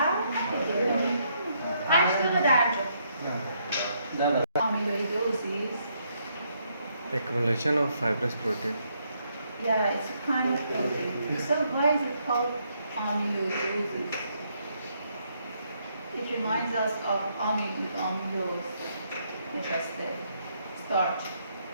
8 دقیقه درجا amyloidosis. Accumulation of fibrous protein. Yeah, it's a kind of protein. So why is it called amyloidosis? It reminds us of amylose, which is the starch.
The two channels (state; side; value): inverted; both; correlation -0.74